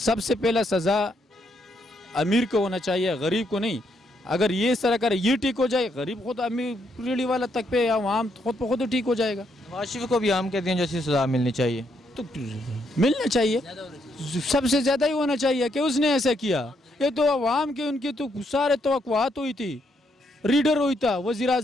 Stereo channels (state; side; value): normal; both; correlation 0.75